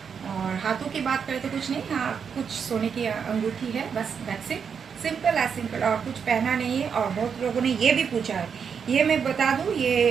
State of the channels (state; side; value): quieter; left; 6.7 dB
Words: और हाथों की बात करें तो कुछ नहीं, हाँ कुछ सोने की अंगूठी है, बस that's it, simple as simple, और कुछ पहना नहीं है। और बहुत लोगों ने ये भी पूछा है, ये मैं बता दूँ,